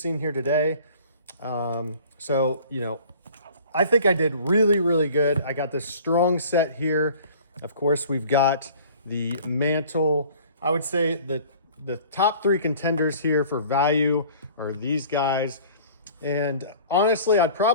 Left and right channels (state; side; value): inverted; both; correlation -0.48